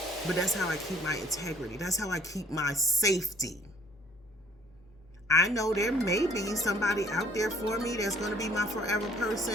But that's how I keep my integrity. That's how I keep my safety. I know there may be somebody out there for me that's going to be my forever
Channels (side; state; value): left; noise; hum, 27 dB below the sound